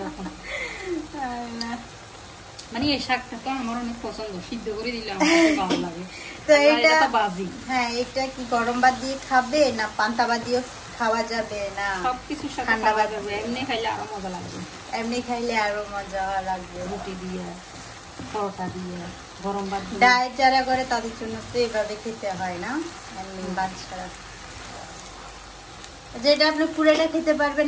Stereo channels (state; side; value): identical; both; correlation 1.00